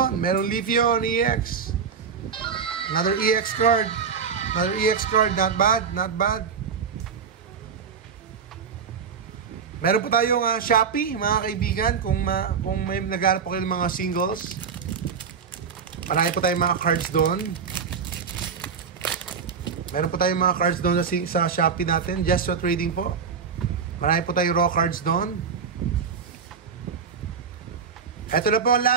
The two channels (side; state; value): left; quieter; 6.3 dB